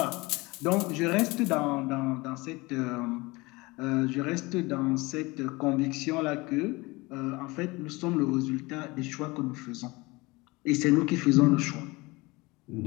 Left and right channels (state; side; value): quieter; right; 23.4 dB